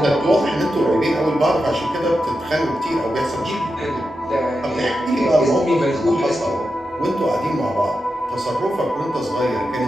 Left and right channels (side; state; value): both; normal; correlation 0.89